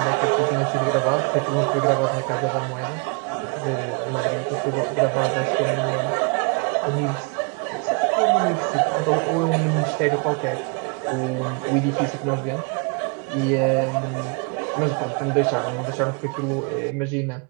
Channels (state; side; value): quieter; left; 34.9 dB